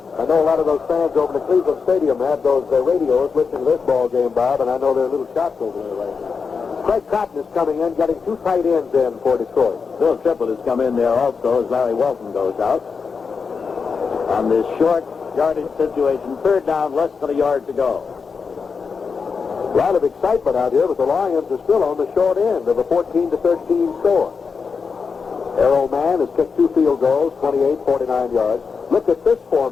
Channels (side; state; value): right; quieter; 5.4 dB